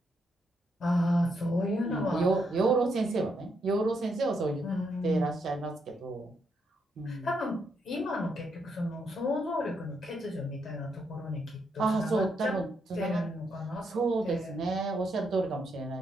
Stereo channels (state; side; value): normal; both; correlation 0.78